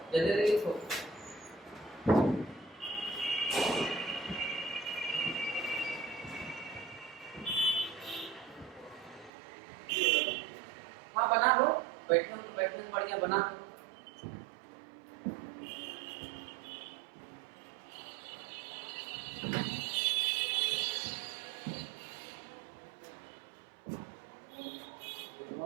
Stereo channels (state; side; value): drops out; left; at 9.3 s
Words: जल्दी लिखो। हाँ बना लो, बैठे हो तो बैठने से बढ़िया बना लो।